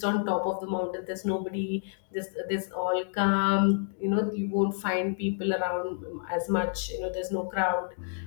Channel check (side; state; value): right; silent; digital silence